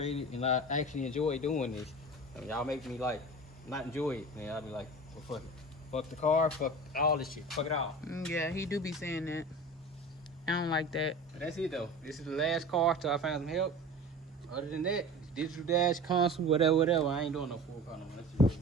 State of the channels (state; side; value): normal; both; correlation 0.35